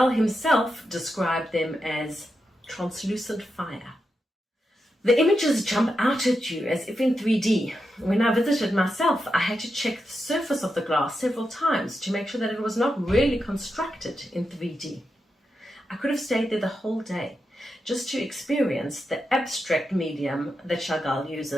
himself described them as translucent fire. The images jump out at you as if in 3D. When I visited myself, I had to check the surface of the glass several times to make sure that it was not really constructed in 3D. I could have stayed there the whole day just to experience the abstract medium that Chagall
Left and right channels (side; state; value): both; normal; correlation 0.87